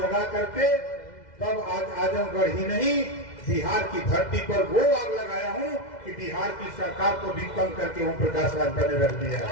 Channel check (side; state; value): right; late; 2.0 ms